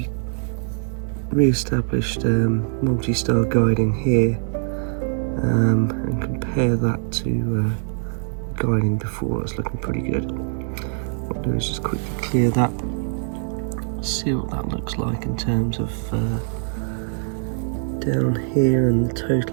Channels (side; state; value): left; silent; 63 dB below the other